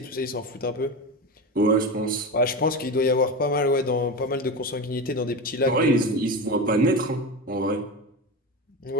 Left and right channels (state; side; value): normal; both; correlation 0.22